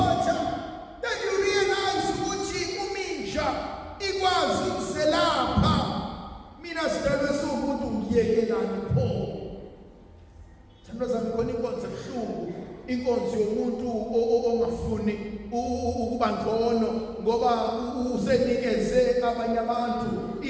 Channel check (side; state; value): both; identical; correlation 1.00